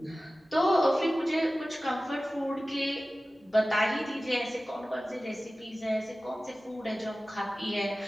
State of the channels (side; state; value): both; normal; correlation 0.96